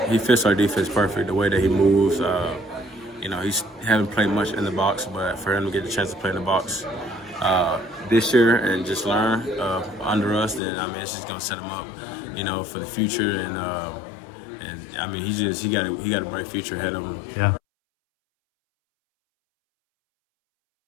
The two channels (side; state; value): right; drops out; at 10.6 s